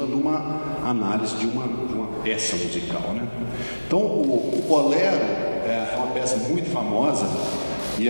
de uma análise de uma peça musical, né? Então, o bolero é uma peça muito famosa e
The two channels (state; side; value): inverted; both; correlation -1.00